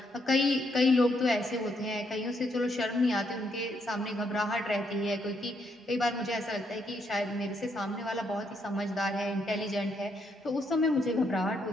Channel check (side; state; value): both; normal; correlation 0.75